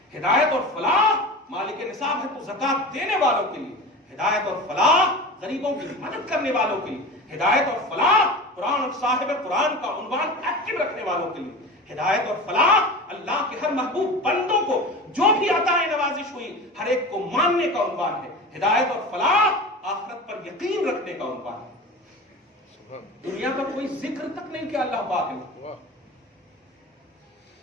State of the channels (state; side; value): normal; both; correlation 0.31